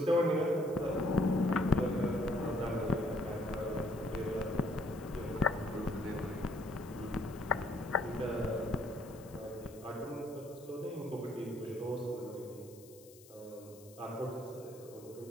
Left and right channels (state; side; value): noise; left; hiss, 22 dB below the sound